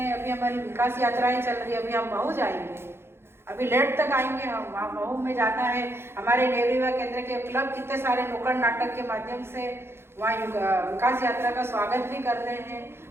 अभी हमारी विकास यात्राएं चल रही है। अभी हम महू जाएंगे, अभी लेट तक आएंगे हम। वहाँ महू में जाना है, हमारे नेहरू युवा केंद्र के क्लब कितने सारे नुक्कड़ नाटक के माध्यम से वहाँ विकास यात्रा का स्वागत भी कर रहे हैं।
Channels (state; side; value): late; left; 0.12 ms